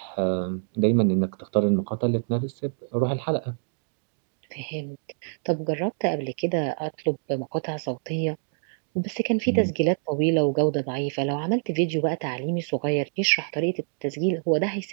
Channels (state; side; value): silent; left; digital silence